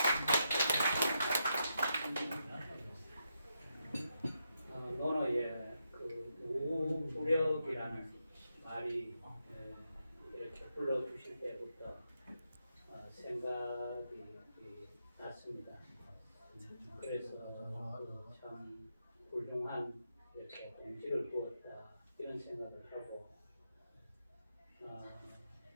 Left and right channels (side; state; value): both; inverted; correlation -0.83